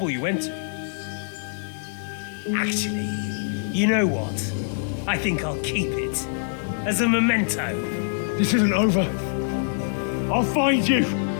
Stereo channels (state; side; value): silent; right; 62 dB below the other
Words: you went to. Actually, you know what? I think I'll keep it. As a memento. This isn't over. I'll find you.